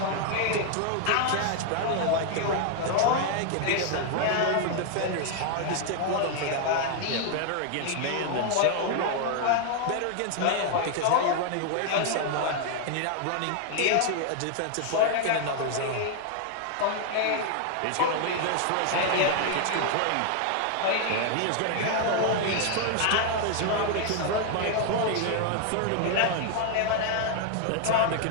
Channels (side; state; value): both; different; correlation 0.00